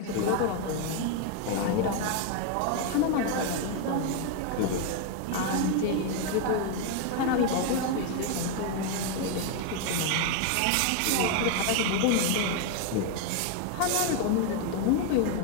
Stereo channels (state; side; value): different; both; correlation 0.01